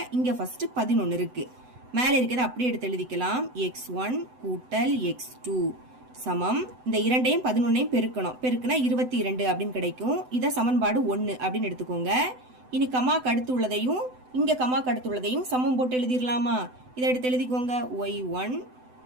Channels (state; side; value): late; left; 7.9 ms